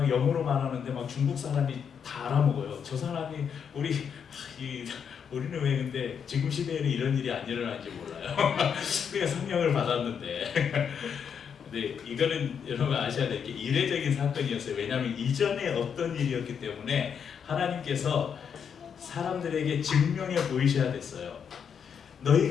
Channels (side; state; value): right; quieter; 7.3 dB